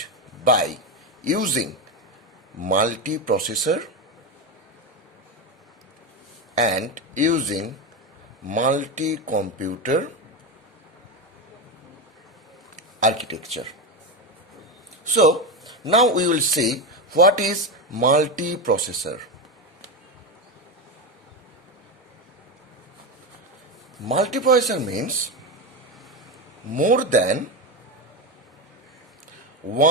by using multiprocessor and using multi-computer architecture. So, now we will see what is multiprocessor. Multiprocessor means more than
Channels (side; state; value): both; normal; correlation 0.14